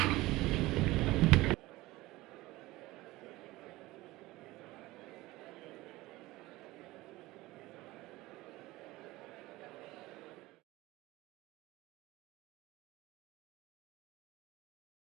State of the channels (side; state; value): left; quieter; 19.1 dB